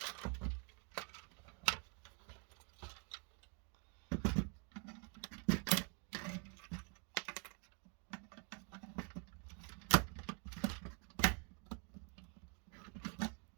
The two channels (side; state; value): left; quieter; 37.0 dB